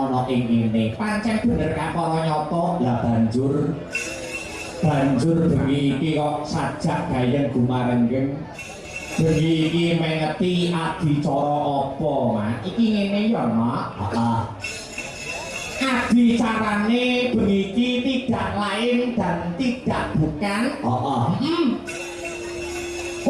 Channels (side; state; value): both; identical; correlation 1.00